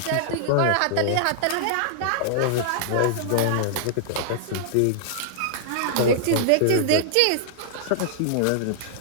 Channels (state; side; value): different; both; correlation -0.01